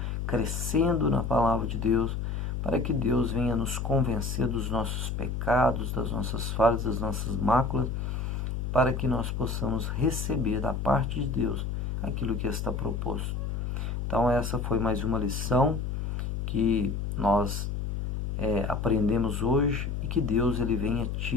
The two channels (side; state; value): left; noise; hum, 2 dB below the sound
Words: crescendo na palavra de Deus, para que Deus venha nos convencer dos nossos pecados, das nossas falhas, das nossas máculas, para que nós possamos receber da parte de Deus aquilo que está proposto. Então essa foi mais uma lição que nós aprendemos hoje e que Deus ele venha